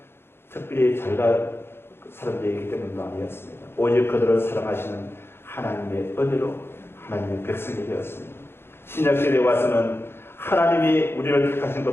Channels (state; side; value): late; right; 0.11 ms